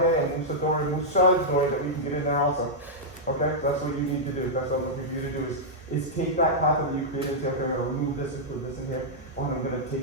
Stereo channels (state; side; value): normal; both; correlation -0.08